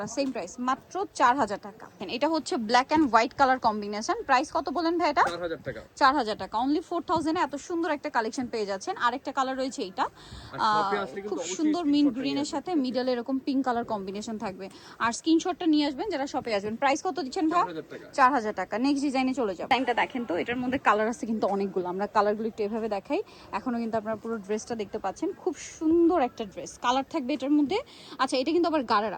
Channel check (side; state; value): both; identical; correlation 1.00